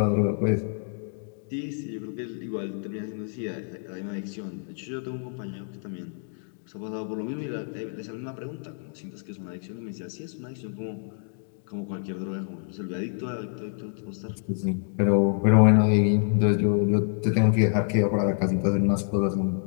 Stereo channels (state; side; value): silent; right; digital silence